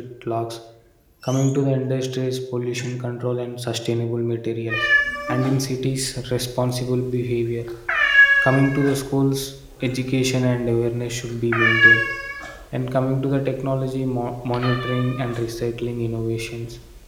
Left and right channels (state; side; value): identical; both; correlation 1.00